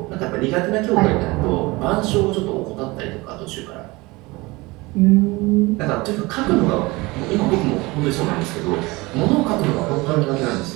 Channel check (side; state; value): left; quieter; 22.9 dB